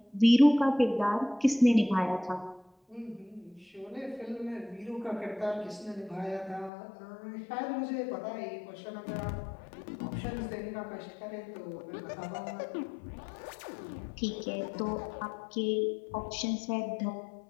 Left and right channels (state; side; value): drops out; right; at 6.7 s